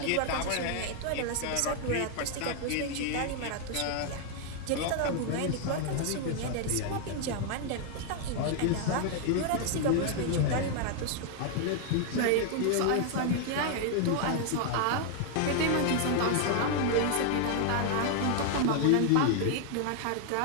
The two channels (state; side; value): different; both; correlation 0.00